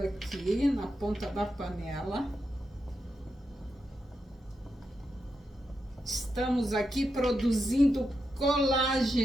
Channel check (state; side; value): normal; both; correlation 0.86